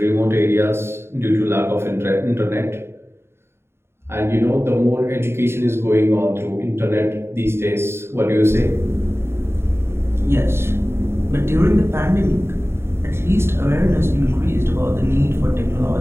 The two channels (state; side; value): late; left; 0.12 ms